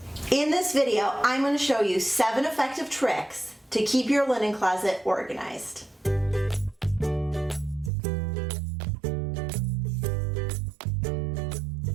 In this video, I'm going to show you 7 effective tricks to keep your linen closet organized.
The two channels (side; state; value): left; drops out; at 7.9 s